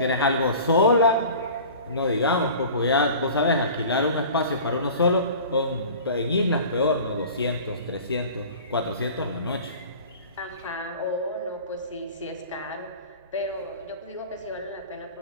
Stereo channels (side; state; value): both; inverted; correlation -0.41